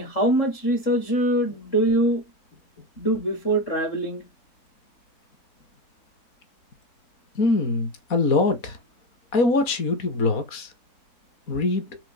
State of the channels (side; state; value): right; late; 4.1 ms